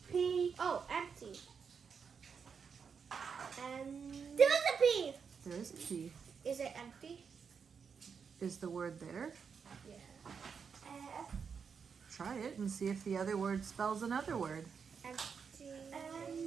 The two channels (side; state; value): left; quieter; 6.2 dB